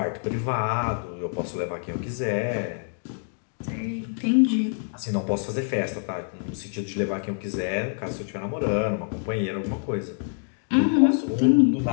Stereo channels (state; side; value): silent; right; 61 dB below the other